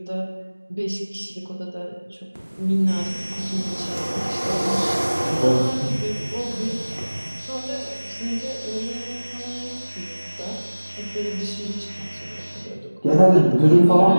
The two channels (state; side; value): inverted; both; correlation -1.00